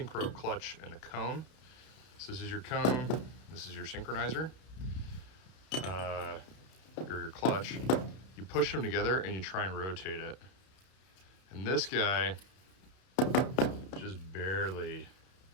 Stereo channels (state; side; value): late; right; 31 ms